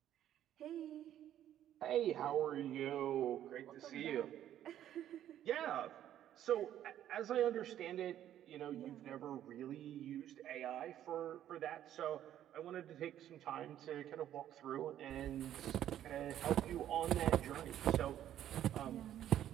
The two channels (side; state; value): left; quieter; 11.4 dB